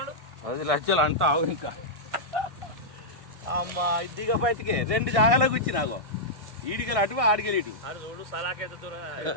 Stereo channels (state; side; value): late; left; 1.6 ms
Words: 10 లక్షలు అంతా ఆవు ఇంకా అమ్మా ఇదిగా బయటికి 2 జాగాలకు వచ్చి నాకు ఈడికెళ్ళి అటు ఆడికెళ్ళి ఇటు